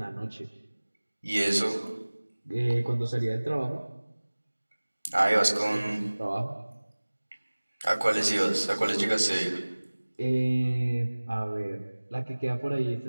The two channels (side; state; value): both; inverted; correlation -1.00